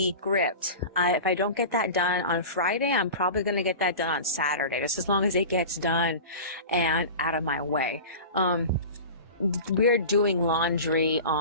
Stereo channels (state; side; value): inverted; both; correlation -0.33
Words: script. If I don't get that done on Friday, I'm probably gonna get that done on Saturday, just as long as it gets done and out of my way. We're doing laundry